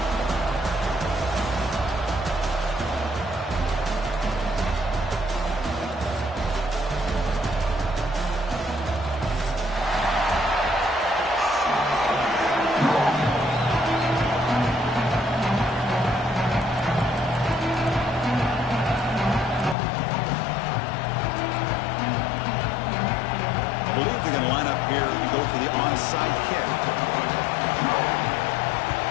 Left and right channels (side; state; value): right; drops out; at 19.8 s